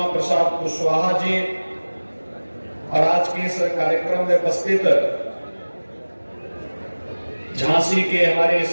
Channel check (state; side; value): inverted; both; correlation -1.00